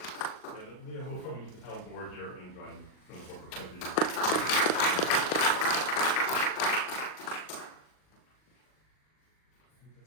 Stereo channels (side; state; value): right; late; 39 ms